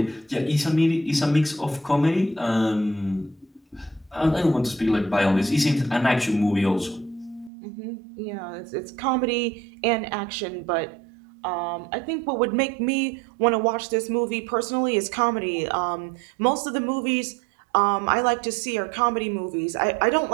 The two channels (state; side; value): drops out; left; at 7.5 s